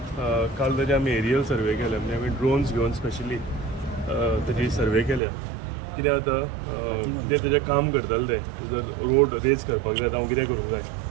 काल ताजे आमी एरियल सर्वे केले म्हणजे आमी ड्रोन्स घेवन स्पेशली ताजी सर्वे केल्या कितें जाता कितें तेजें काम करताले ते जर रोड रेज करपाक जाय हांव कितें करूंक जाय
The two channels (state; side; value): drops out; left; at 5.2 s